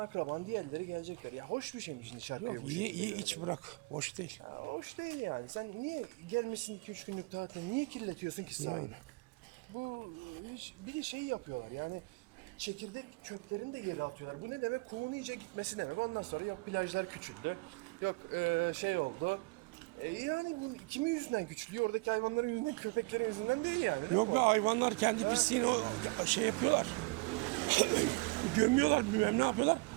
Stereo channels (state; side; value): quieter; left; 26.8 dB